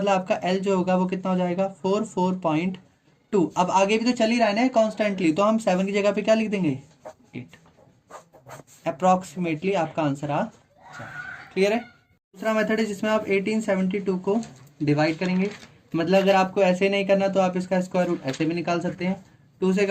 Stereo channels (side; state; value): both; identical; correlation 1.00